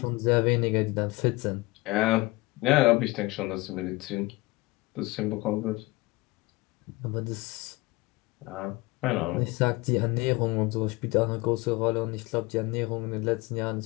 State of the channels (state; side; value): quieter; right; 22.5 dB